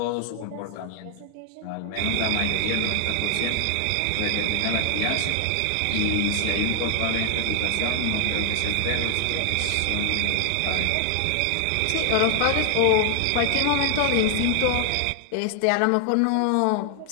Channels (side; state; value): both; different; correlation 0.00